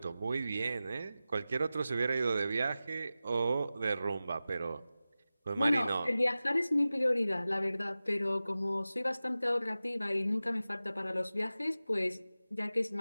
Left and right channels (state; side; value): inverted; both; correlation -0.95